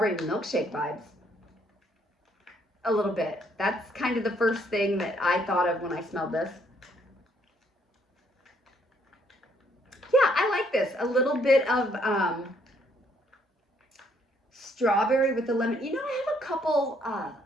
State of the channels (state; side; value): normal; both; correlation 0.68